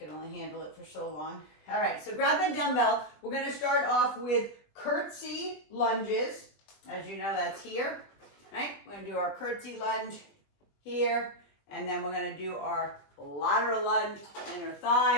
only handle it for so long. All right, so grab that dumbbell. We're going to start off with curtsy lunges. As you know, that's here. Right? We're going to do our curtsy lunge here. And then we're going to do our lateral lunge, inner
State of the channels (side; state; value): right; late; 20 ms